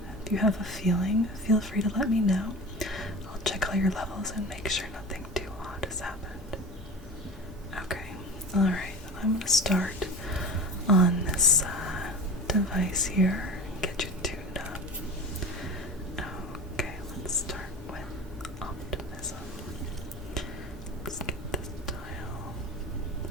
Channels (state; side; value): normal; both; correlation 0.33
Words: if you have a feeling, feel free to let me know. I'll check all your levels and make sure nothing too odd has happened. Okay, alright, I'm going to start on this device here and get you tuned up. Okay, let's start with optimism. Let's get this dial